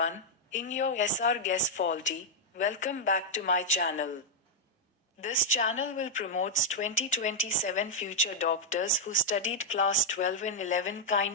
in your SRGuess faulty, welcome back to my channel. This channel will promote 2027 future doctors who studied class 12 and 11.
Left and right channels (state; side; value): normal; both; correlation -0.03